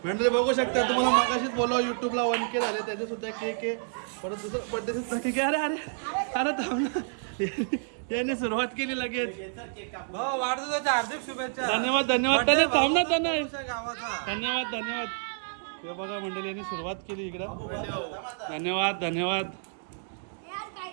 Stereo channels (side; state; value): left; silent; digital silence